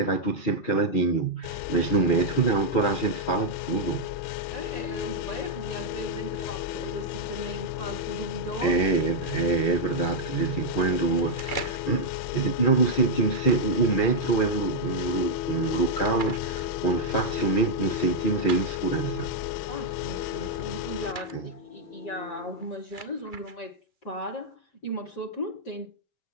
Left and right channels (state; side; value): late; right; 6.3 ms